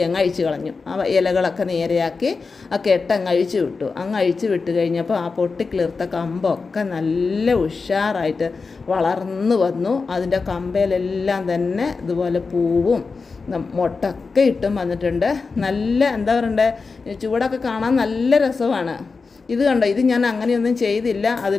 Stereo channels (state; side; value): quieter; right; 4.5 dB